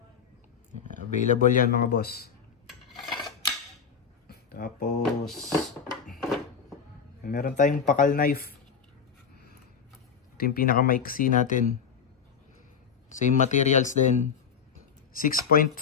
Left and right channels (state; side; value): quieter; right; 6.8 dB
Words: Available yan mga boss. Tapos meron tayong pakal knife. Ito yung pinakamaiksi natin. Same materials din. 6.5